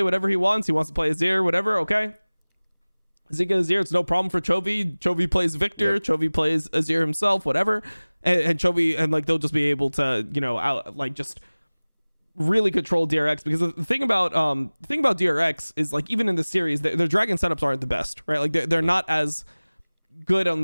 whatever he wants. He wants to play Azir, whatever. Okay. Zeka Azir, it's no problem for Chovy. Chovy plays Victor. Chovy plays Azir himself, whatever. And Chovy, and like they'll just be able to, you know, just really control DRX, because the thing about DRX is like, even in the series, their dragon setups aren't the best, right? Like they're not as good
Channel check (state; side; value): inverted; both; correlation -1.00